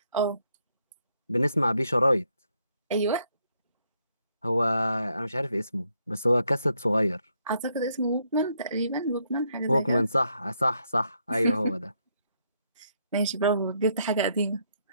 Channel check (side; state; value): both; inverted; correlation -0.74